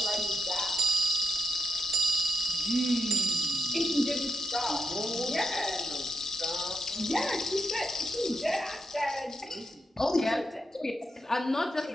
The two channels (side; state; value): both; normal; correlation 0.81